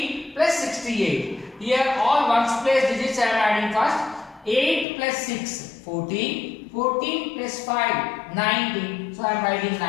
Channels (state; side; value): drops out; right; at 4.9 s